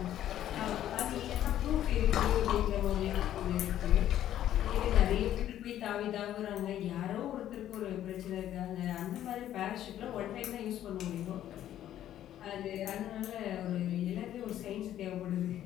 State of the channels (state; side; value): quieter; right; 11.8 dB